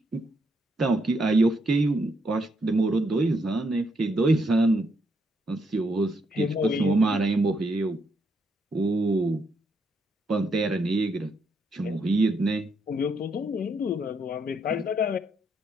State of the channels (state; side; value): normal; both; correlation 0.76